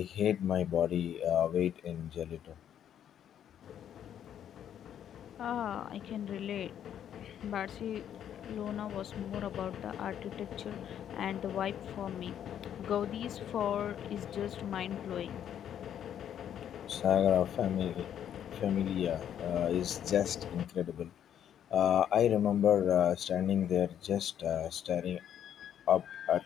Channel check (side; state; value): right; quieter; 9.8 dB